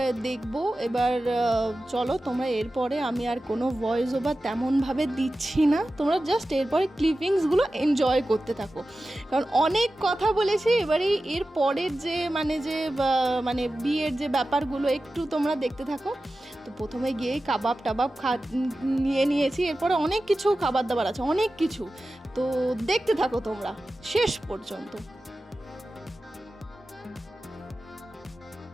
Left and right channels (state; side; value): normal; both; correlation 0.94